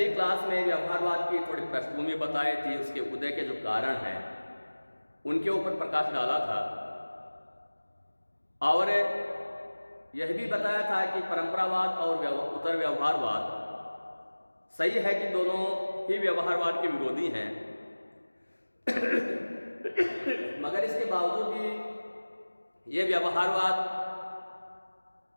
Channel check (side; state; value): both; inverted; correlation -1.00